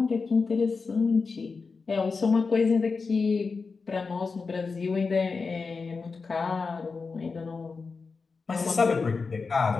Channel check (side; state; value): right; quieter; 4.6 dB